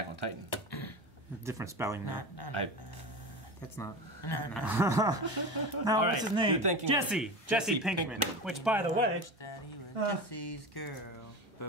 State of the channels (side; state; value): both; normal; correlation 0.27